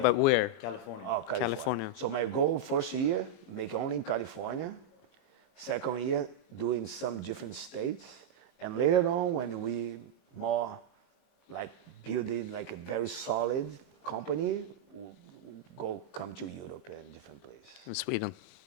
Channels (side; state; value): right; late; 22 ms